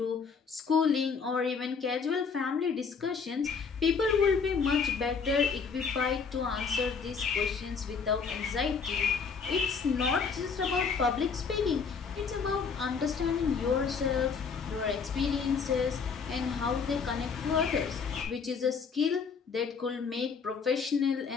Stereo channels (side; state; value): right; quieter; 5.6 dB